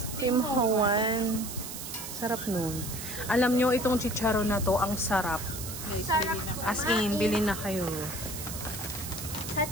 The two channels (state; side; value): noise; right; hiss, 8 dB below the sound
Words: Team Hoan. Sarap nun. Alam nyo, itong chicharon na to, ang sarap. Sarap As in, bilhin na kayo.